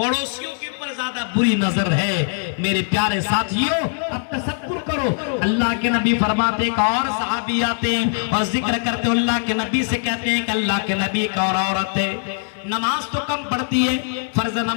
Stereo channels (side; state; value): right; silent; 65 dB below the other